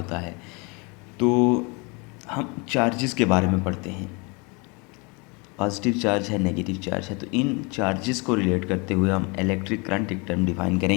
है। तो हम चार्जेस के बारे में पढ़ते हैं, पॉजिटिव चार्ज है, नेगेटिव चार्ज है। तो इन चार्जेस को रिलेट करते हुए हम इलेक्ट्रिक करंट एक टर्म डिफाइन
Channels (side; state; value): right; quieter; 30.0 dB